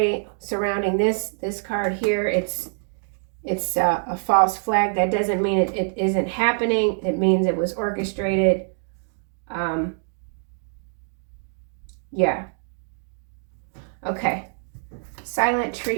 surrounding this card here, it's a false flag. That doesn't mean it isn't happening. It means it was orchestrated. Yeah. Okay. Silent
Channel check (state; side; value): silent; left; 60 dB below the other